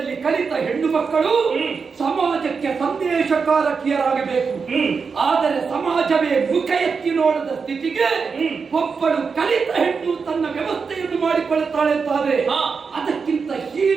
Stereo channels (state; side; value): quieter; left; 5.3 dB